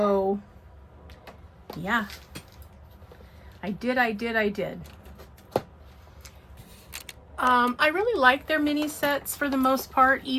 yeah, I did. I really like their mini sets for the most part,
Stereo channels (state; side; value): identical; both; correlation 1.00